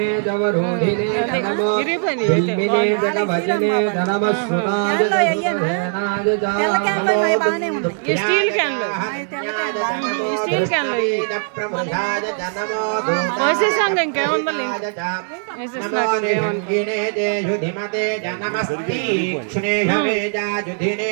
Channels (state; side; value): silent; left; 66 dB below the other